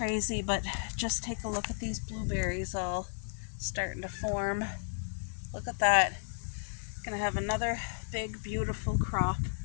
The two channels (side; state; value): right; silent; 55 dB below the other